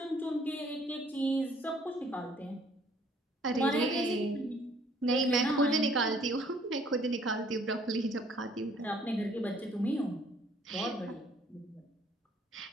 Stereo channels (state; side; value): normal; both; correlation 0.61